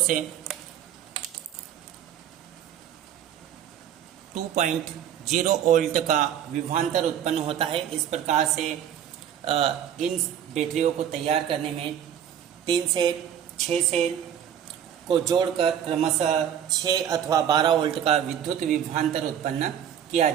2.0 वोल्ट का विभवांतर उत्पन्न होता है। इस प्रकार से इन बैटरियों को तैयार करने में 3 से 6 सेल को जोड़कर क्रमशः 6 अथवा 12 वोल्ट का विद्युत विभवांतर उत्पन्न किया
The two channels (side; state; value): left; quieter; 9.6 dB